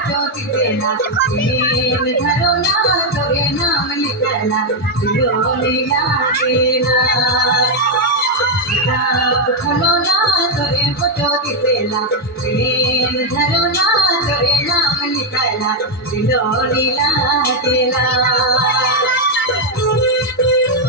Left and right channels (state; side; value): normal; both; correlation 0.01